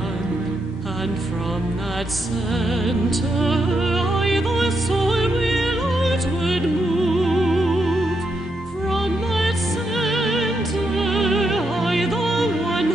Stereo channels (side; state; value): both; normal; correlation 0.81